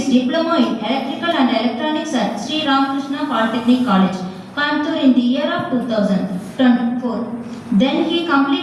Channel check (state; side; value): identical; both; correlation 1.00